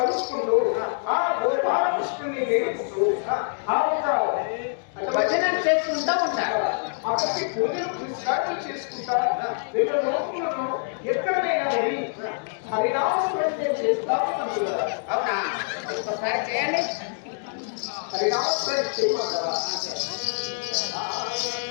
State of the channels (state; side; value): silent; right; digital silence